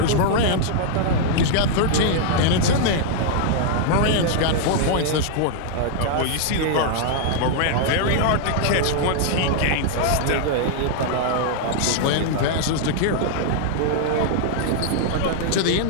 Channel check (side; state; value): both; different; correlation -0.01